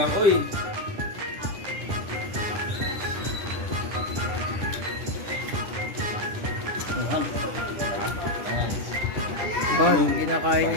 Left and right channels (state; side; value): late; left; 9.9 ms